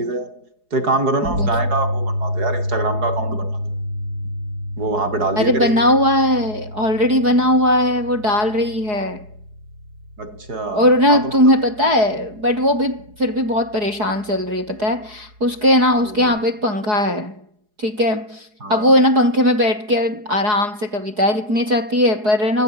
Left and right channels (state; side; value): late; left; 4.8 ms